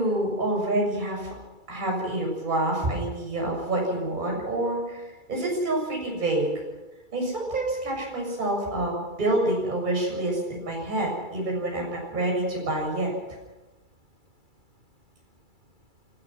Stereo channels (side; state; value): left; late; 2.3 ms